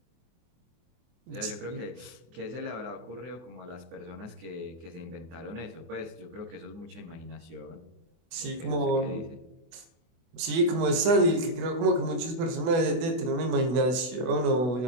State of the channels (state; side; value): late; left; 24 ms